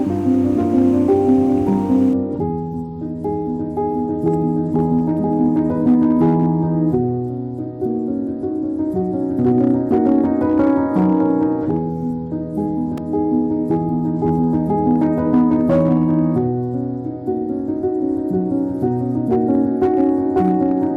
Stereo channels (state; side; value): identical; both; correlation 1.00